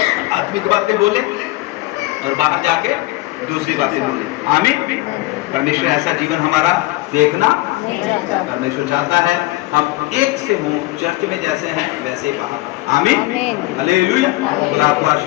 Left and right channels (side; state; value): right; quieter; 19.6 dB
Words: आत्मिक बातें बोले और बाहर जाके दूसरी बातें बोले। आमीन। परमेश्वर ऐसा जीवन हमारा देखना परमेश्वर चाहता है, हम एक से हों, चर्च में जैसे हैं वैसे ही बाहर। आमीन। हालेलुया। खुदा आपको